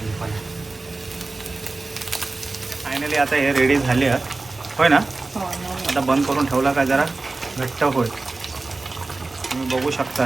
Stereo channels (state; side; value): quieter; left; 3.4 dB